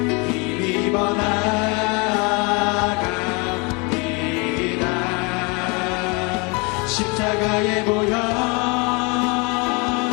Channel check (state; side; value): quieter; right; 29.9 dB